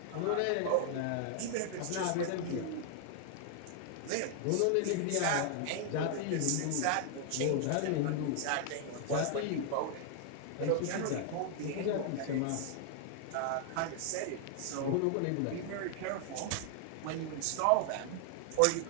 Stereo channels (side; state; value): both; different; correlation 0.00